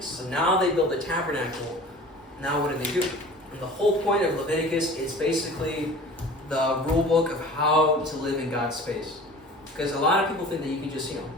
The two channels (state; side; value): normal; both; correlation 0.42